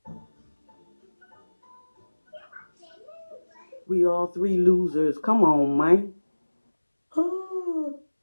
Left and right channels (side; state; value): both; inverted; correlation -1.00